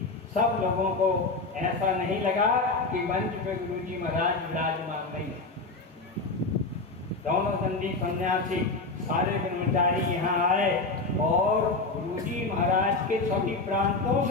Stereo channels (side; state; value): right; quieter; 3.6 dB